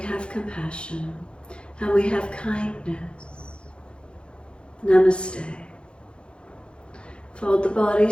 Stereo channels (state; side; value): late; right; 0.055 ms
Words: compassion and we have kindness. Namaste. Fold the body,